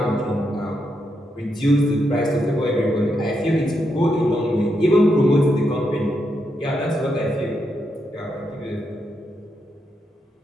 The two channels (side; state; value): both; normal; correlation 0.82